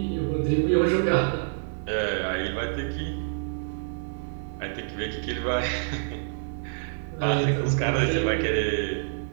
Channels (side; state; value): left; silent; 58 dB below the other